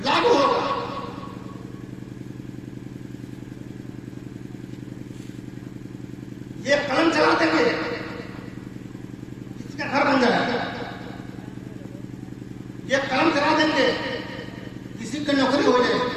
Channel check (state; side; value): identical; both; correlation 1.00